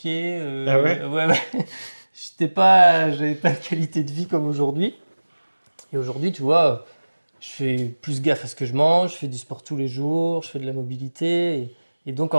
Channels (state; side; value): inverted; both; correlation -1.00